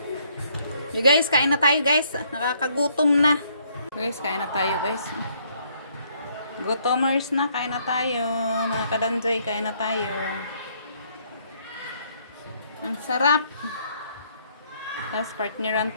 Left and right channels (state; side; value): inverted; both; correlation -0.67